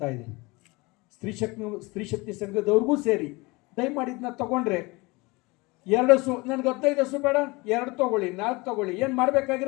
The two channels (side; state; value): right; quieter; 24.5 dB